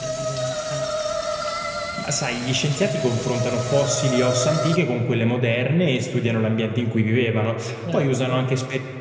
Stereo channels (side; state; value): both; identical; correlation 1.00